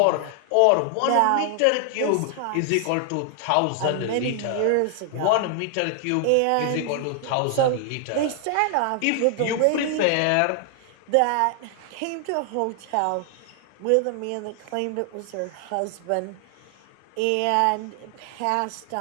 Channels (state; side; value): different; both; correlation 0.00